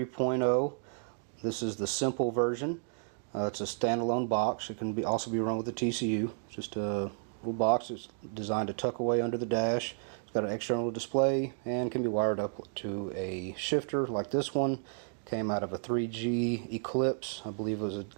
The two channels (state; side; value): silent; left; digital silence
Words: This is the simple version. It's a standalone box. It can also be run with a TCU. Just a little box. It's designed to tuck away under the dash. It's got an external display and can be wired up to a shifter like this one. Came out of a 3G Eclipse, I believe it was a